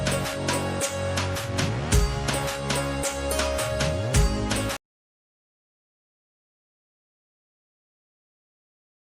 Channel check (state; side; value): identical; both; correlation 1.00